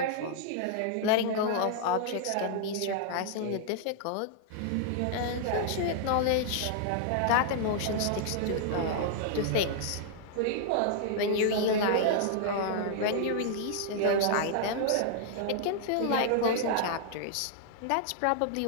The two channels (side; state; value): both; different; correlation -0.01